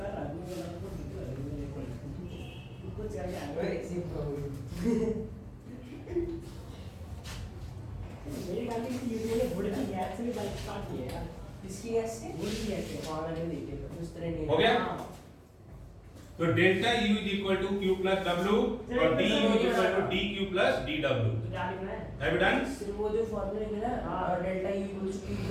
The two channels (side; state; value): both; identical; correlation 1.00